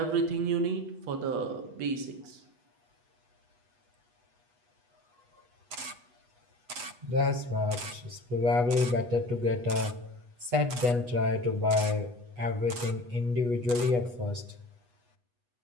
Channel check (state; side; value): late; left; 8.2 ms